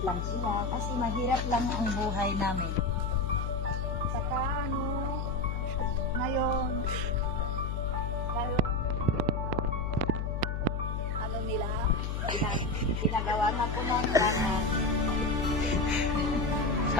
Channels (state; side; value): noise; left; hum, 1 dB below the sound